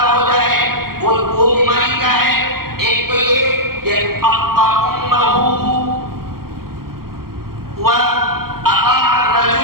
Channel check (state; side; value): late; left; 0.93 ms